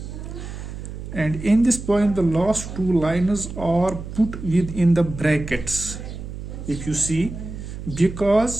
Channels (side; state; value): right; noise; hum, 9 dB below the sound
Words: And in this poem the last two lines are put within the brackets, if you see,